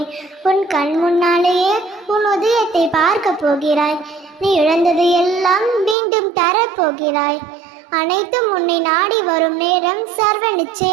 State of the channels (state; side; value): drops out; left; at 6.0 s